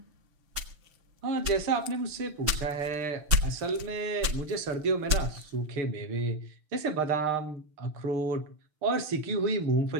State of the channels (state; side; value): late; left; 6.6 ms